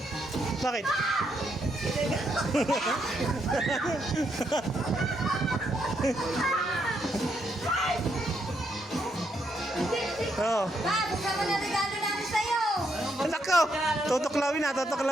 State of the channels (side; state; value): both; normal; correlation 0.77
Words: Bakit? Oh. Bob, buksan mo na regalo namin sa'yo. Nako! Tutuklawin na,